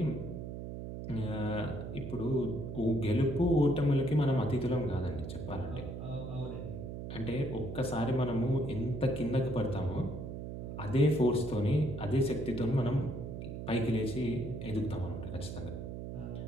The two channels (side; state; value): right; noise; hum, 7 dB below the sound